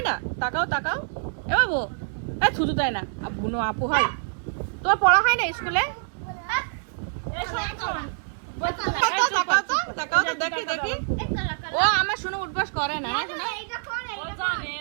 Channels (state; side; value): silent; left; digital silence